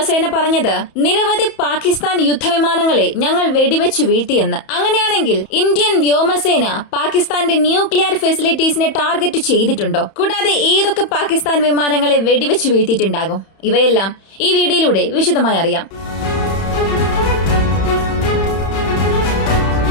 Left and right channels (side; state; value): right; late; 31 ms